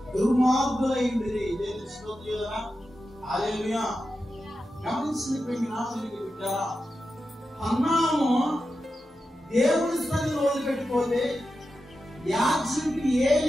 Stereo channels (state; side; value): normal; both; correlation 0.90